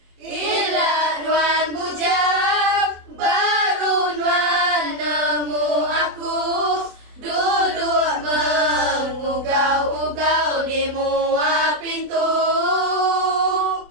Ilat nuan bujang, baru nuan nemu aku. Duduk mengugau-ugau di muat pintu.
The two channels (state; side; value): late; left; 24 ms